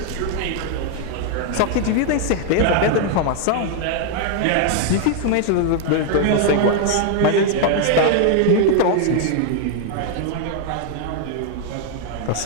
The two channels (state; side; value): different; both; correlation 0.00